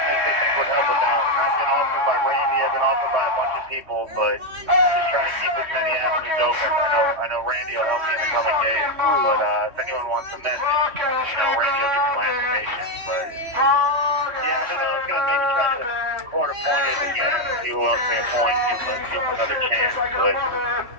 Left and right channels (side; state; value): left; late; 3.1 ms